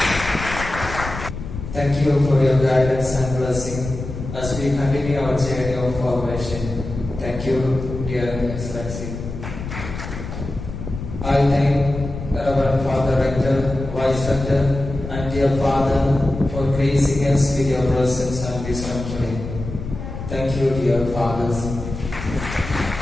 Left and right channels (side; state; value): left; noise; rumble, 8 dB below the sound